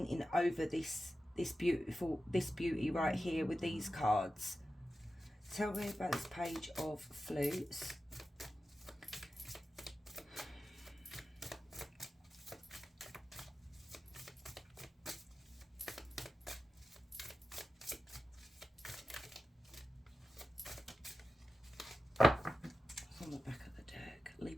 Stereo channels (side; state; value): both; normal; correlation 0.93